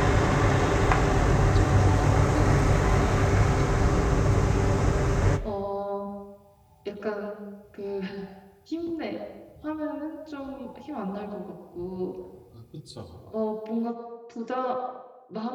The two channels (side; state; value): both; identical; correlation 1.00